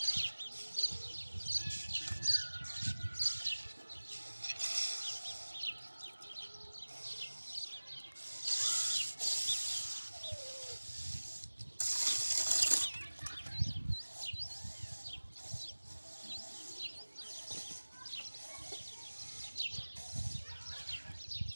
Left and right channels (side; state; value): both; inverted; correlation -1.00